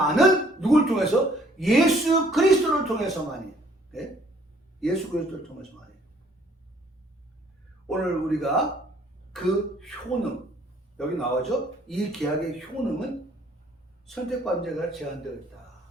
누굴 통해서? 예수 그리스도를 통해서만이. 네? 예수 그리스도를 통해서만이. 오늘 우리가 그 효능, 여기 나오죠? 이 계약의 효능은 선택받은 자가 제한되어 있다.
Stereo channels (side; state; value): both; normal; correlation 0.61